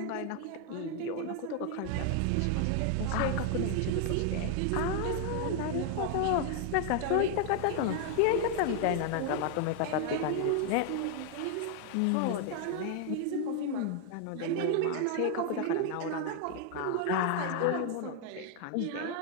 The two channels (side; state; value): both; different; correlation 0.00